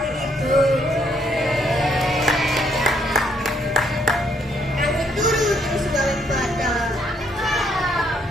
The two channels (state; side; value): normal; both; correlation 0.70